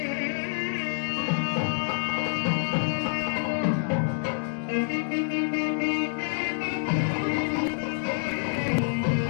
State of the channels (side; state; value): right; silent; 60 dB below the other